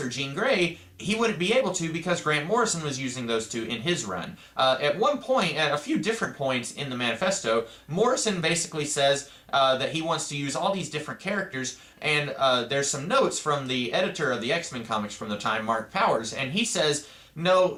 or Jean Grey, he wouldn't be able to because Grant Morrison was using those two in his run. At one point, at a few different points in the Manifesto, Morrison basically says that he wants to use all these different characters, and there's some notes from the editor of the X-Men comics from the time, Mark Powers, and he says, no,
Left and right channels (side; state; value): both; identical; correlation 1.00